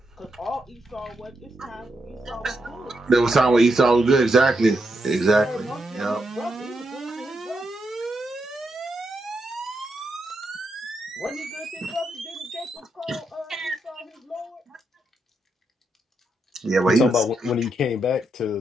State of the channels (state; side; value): normal; both; correlation 0.82